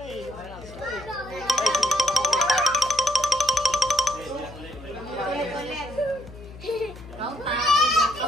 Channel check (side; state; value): left; noise; hum, 17 dB below the sound